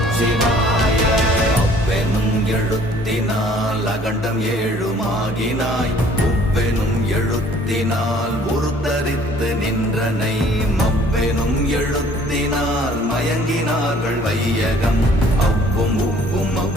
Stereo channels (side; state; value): both; normal; correlation 0.56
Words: அவ்வெனும் எழுத்தினால் அகண்டம் ஏழுமாகினாய், உவ்வெனும் எழுத்தினால் உருத்தரித்து நின்றனை, மவ்வெனும் எழுத்தினால் மயங்கினார்கள் வையகம். அவ்வும் உவ்வும்